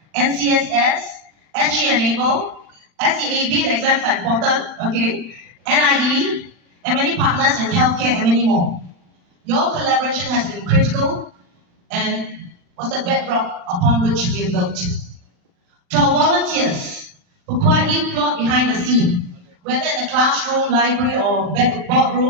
NCSS, SG Enable, SEAB, the exams are important, okay, NIE, and many partners in healthcare and many more. Your collaboration has been critical and was the bedrock upon which we have built. To our volunteers who quietly plot behind the scene, whether in the classroom, library, or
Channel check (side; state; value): left; late; 40 ms